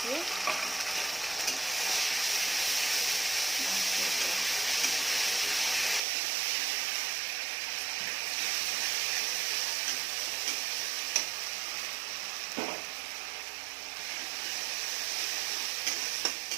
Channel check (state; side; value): drops out; left; at 6.0 s